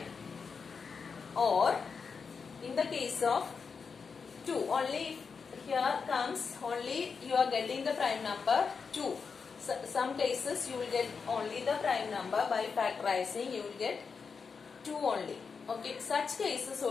or in the case of 2, only here comes only you are getting the prime number 2. So, some cases you will get only the prime number. By factorizing you will get 2 only. Okay, such cases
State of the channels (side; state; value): right; quieter; 5.5 dB